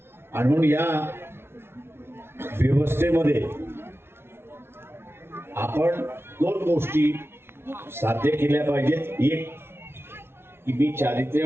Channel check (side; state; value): left; late; 0.12 ms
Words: आणि म्हणून या व्यवस्थेमध्ये आपण दोन गोष्टी साध्य केल्या पाहिजेत. एक की मी